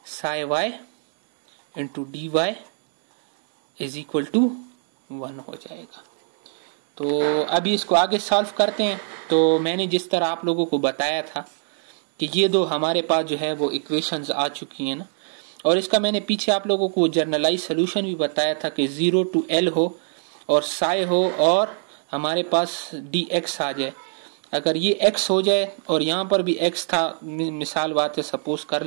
psi Y into d y is equal to 1 हो जाएगा। तो अभी इसको आगे सॉल्व करते हैं। तो मैंने जिस तरह आप लोगों को बताया था कि ये दो हमारे पास जो है वो इक्वेशंस आ चुकी हैं ना, और इसका मैंने पीछे आप लोगों को जर्नलाइज सोल्यूशन भी बताया था कि 0 to l हो और साई हो और हमारे पास dx आ जाए। अगर ये x हो जाए और यहाँ पर भी x था, मिसाल बात है सपोज कर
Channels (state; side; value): silent; left; digital silence